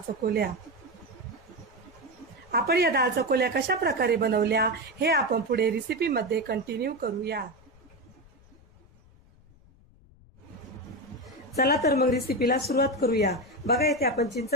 चकोल्या। आपण या डाळ चकोल्या कशा प्रकारे बनवल्या हे आपण पुढे रेसिपी मध्ये कंटिन्यू करूया। चला तर मग रेसिपीला सुरुवात करूया। बघा, इथे आपण चिंच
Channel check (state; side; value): noise; left; rumble, 27 dB below the sound